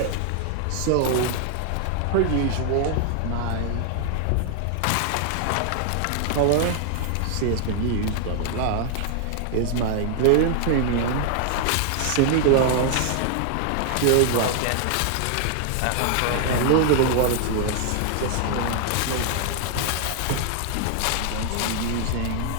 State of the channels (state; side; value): different; both; correlation 0.00